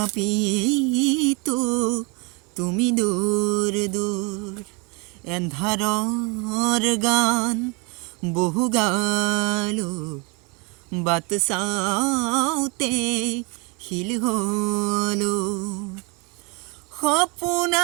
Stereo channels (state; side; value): quieter; left; 30.7 dB